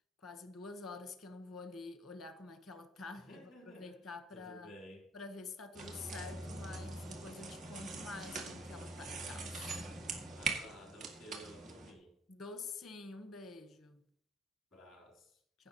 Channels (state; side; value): normal; both; correlation 0.61